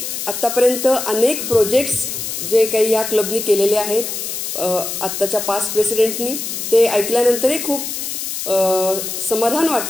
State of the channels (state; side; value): noise; left; hiss, 5 dB below the sound